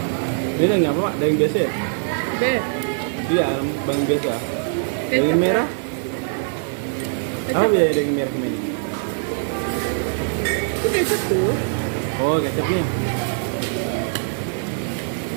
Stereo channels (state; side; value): silent; left; digital silence